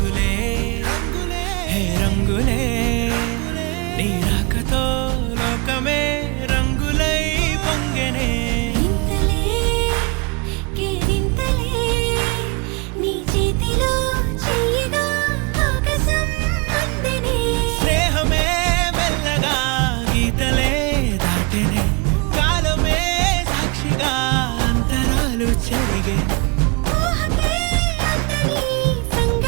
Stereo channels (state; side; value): quieter; left; 29.2 dB